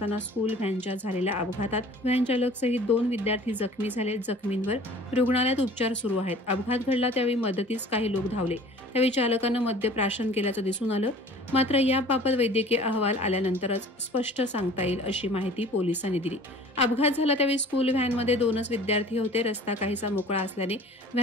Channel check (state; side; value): normal; both; correlation 0.46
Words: स्कूल व्हॅनच्या झालेल्या अपघातात व्हॅन चालकसहित 2 विद्यार्थी जखमी झाले। जखमींवर रुग्णालयात उपचार सुरू आहेत। अपघात घडला त्यावेळी मदतीस काही लोक धावले, त्यावेळी चालकानं मद्यप्राशन केल्याचं दिसून आलं, मात्र याबाबत वैद्यकीय अहवाल आल्यानंतरच स्पष्ट सांगता येईल अशी माहिती पोलिसांनी दिली। अपघात झाला त्यावेळी स्कूल व्हॅनमध्ये 2च विद्यार्थी होते। रस्ता काहीसा मोकळा असल्याने